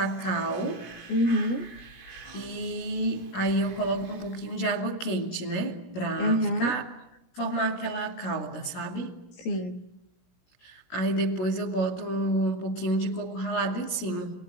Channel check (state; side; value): late; right; 17 ms